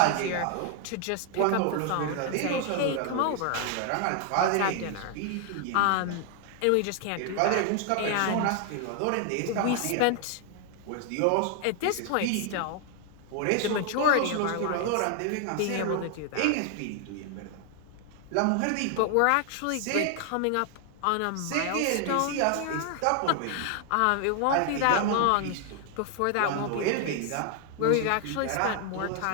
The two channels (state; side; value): different; both; correlation 0.00